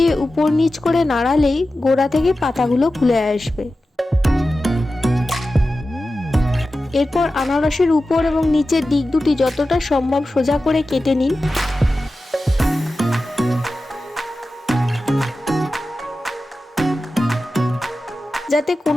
উপর নিচ করে নাড়ালেই গোড়া থেকে পাতাগুলো খুলে আসবে। এরপর আনারসের উপর এবং নিচের দিক দুটি যতটা সম্ভব সোজা করে কেটে নিন। যাতে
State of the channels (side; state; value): both; normal; correlation 0.94